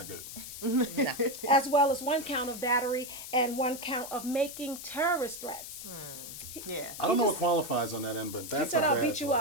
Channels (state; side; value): noise; left; hiss, 10 dB below the sound